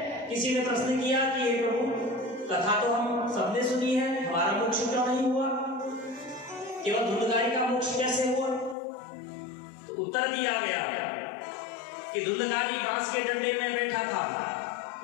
किसी ने प्रश्न किया कि हे प्रभु, कथा तो हम सबने सुनी है, हमारा मोक्ष क्यों नहीं हुआ, केवल धुंधकारी का मोक्ष कैसे हुआ? तो उत्तर दिया गया कि धुंधकारी बांस के डंडे में बैठा था,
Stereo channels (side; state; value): right; drops out; at 8.8 s